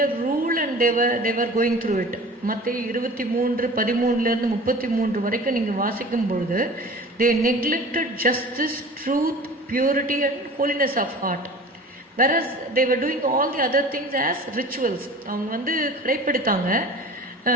rule and they were going through it. மத்தேயு 23:13-33 வரைக்கும் நீங்கள் வாசிக்கும் பொழுது they neglected justice, truth, purity and holiness of heart, whereas they were doing all the other things as rituals. அவங்க கடைப்பிடித்தாங்க.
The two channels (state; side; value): normal; both; correlation 0.40